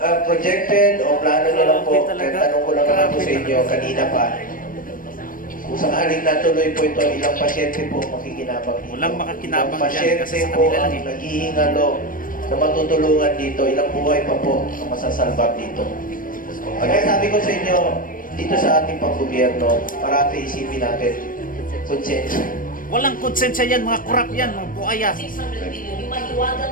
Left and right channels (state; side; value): late; right; 0.40 ms